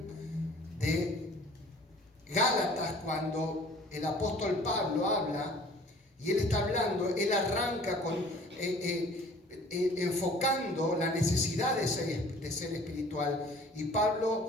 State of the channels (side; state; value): both; normal; correlation 0.50